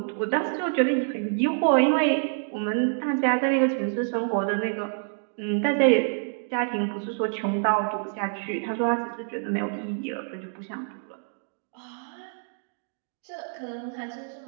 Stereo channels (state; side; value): silent; left; digital silence